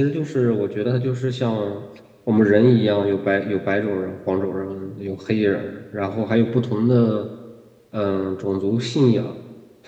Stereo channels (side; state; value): both; identical; correlation 1.00